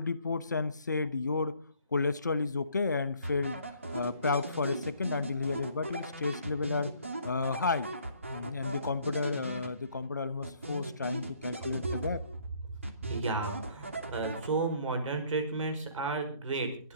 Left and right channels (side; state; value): both; inverted; correlation -0.62